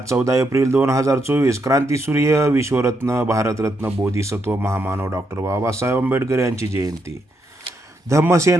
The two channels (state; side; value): normal; both; correlation 0.79